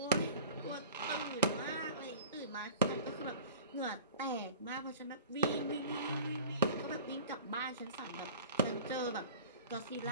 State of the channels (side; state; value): both; inverted; correlation -0.41